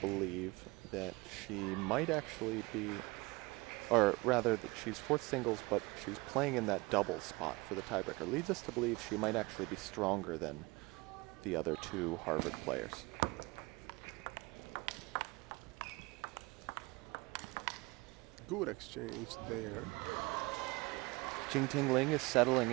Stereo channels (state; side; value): quieter; left; 23.9 dB